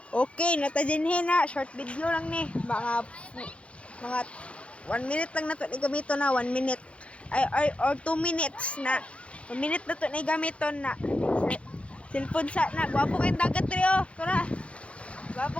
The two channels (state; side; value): late; right; 0.061 ms